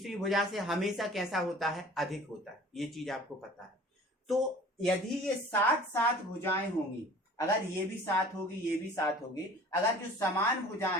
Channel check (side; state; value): both; normal; correlation 0.46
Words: भुजा से हमेशा कैसा होता है, अधिक होता है, ये चीज आपको पता है। तो यदि ये 7 भुजाएं होंगी, अगर ये भी 7 होगी ये भी 7 होगी, अगर जो समान